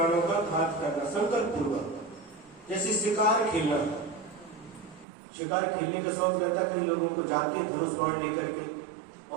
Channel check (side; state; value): left; drops out; at 5.1 s